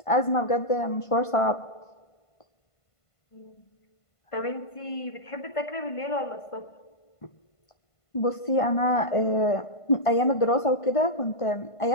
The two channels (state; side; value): late; right; 1.5 ms